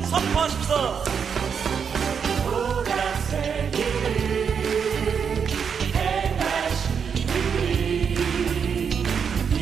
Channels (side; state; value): left; quieter; 6.8 dB